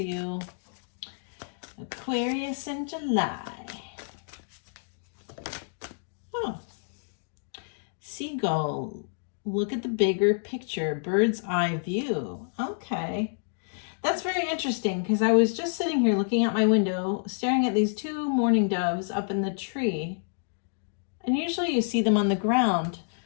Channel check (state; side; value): silent; right; digital silence